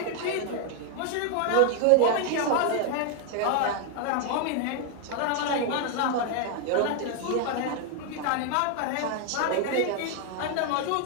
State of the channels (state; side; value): different; both; correlation 0.00